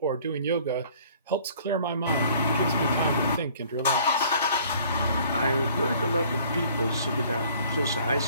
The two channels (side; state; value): both; inverted; correlation -0.54